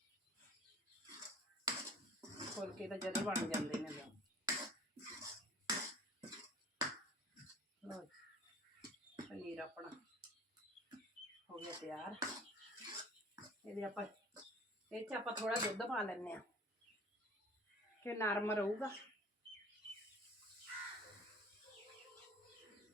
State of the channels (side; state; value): both; normal; correlation 0.48